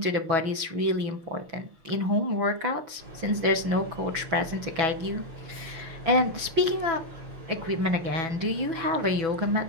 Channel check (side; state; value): left; late; 6.1 ms